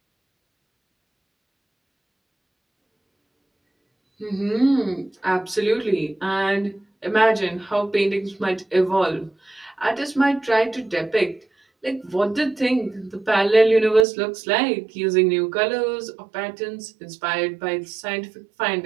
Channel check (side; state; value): left; drops out; at 14.1 s